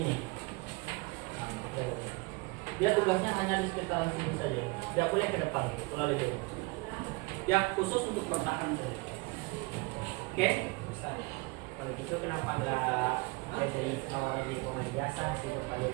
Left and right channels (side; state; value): left; quieter; 26.3 dB